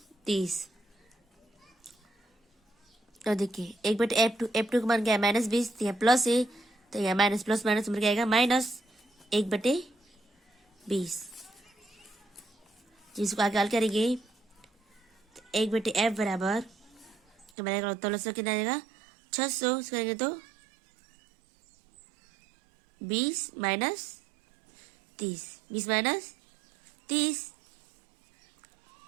30। और देखिए 1/F2, F2 का मान क्या है -20, तो यहाँ प्लस है, तो यहाँ माइनस प्लस माइनस क्या आएगा -1/20। जिसको आगे हल करेंगे 1/F बराबर तो मेरा उत्तर कितना आ जाएगा 600 करेंगे तो 20 माइनस 30।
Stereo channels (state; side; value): drops out; left; at 17.5 s